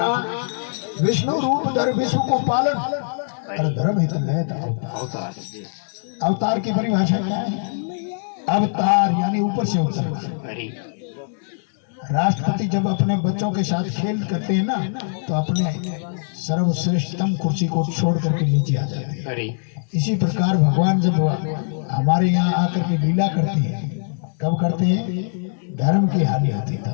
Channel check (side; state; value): right; silent; digital silence